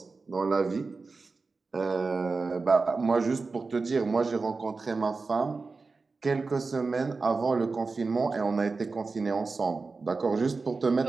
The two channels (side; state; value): left; quieter; 4.1 dB